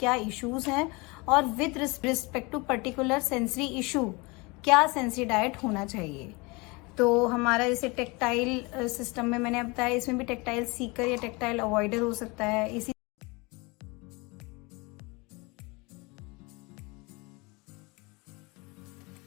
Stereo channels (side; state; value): right; quieter; 26.5 dB